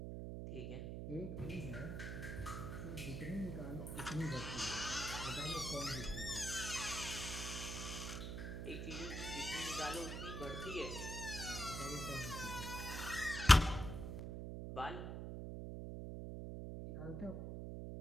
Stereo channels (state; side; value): noise; right; hum, 5 dB below the sound